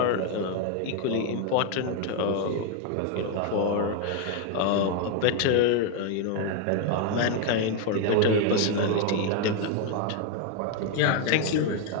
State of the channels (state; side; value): different; both; correlation 0.01